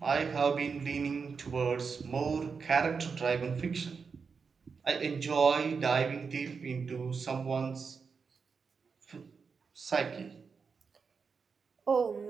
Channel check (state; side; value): quieter; left; 5.4 dB